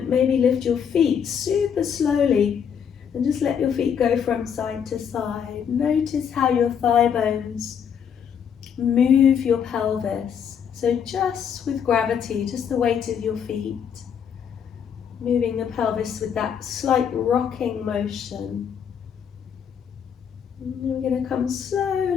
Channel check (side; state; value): right; quieter; 7.8 dB